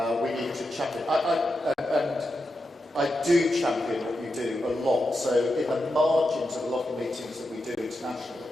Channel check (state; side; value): normal; both; correlation 0.88